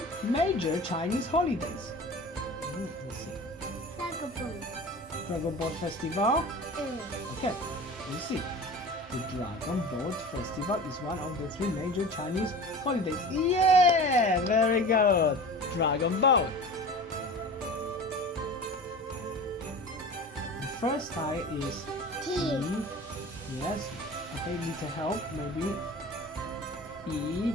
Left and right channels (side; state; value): both; normal; correlation 0.36